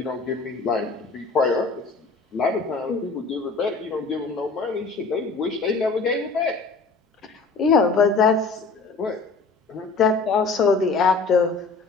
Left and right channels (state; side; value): quieter; right; 4.2 dB